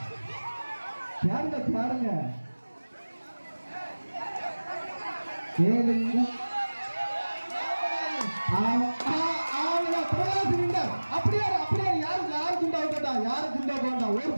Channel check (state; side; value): inverted; both; correlation -1.00